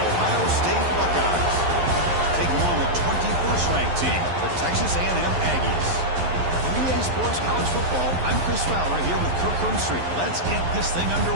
Ohio State Buckeyes, taking on the 21st ranked team, the Texas A&M Aggies. 3A Sports College Football, I'm Chris Fowler here with Kirk Hermstreet. Let's get this thing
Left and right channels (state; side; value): late; left; 11 ms